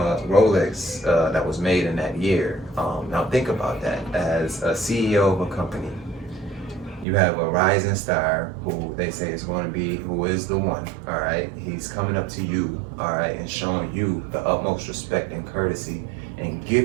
Rolex that was made in that year. Now think about that. As a CEO of a company, you have a rising star who they say is going to be, who is the one, all right? He's coming up to you, all right, and showing you the utmost respect and courtesy and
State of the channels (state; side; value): drops out; left; at 7.1 s